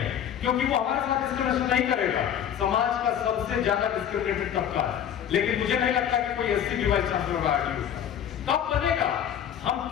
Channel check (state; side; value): quieter; right; 9.4 dB